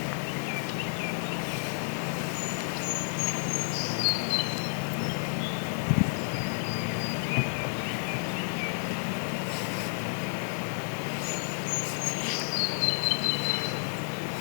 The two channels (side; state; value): right; silent; digital silence